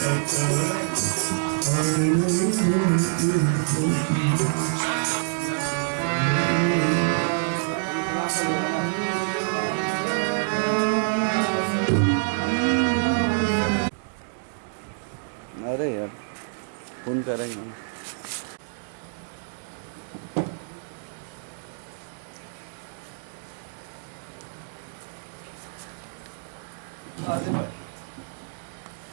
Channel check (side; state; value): left; silent; digital silence